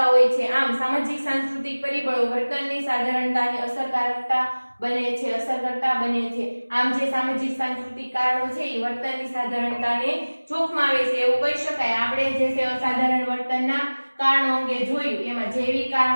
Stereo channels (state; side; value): inverted; both; correlation -1.00